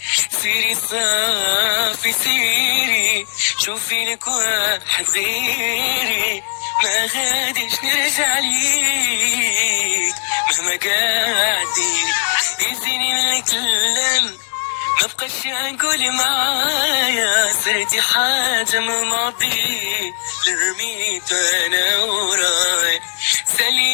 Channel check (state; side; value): silent; right; 65 dB below the other